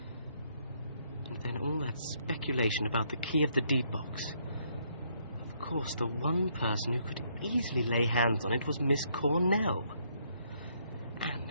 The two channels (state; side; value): inverted; both; correlation -0.71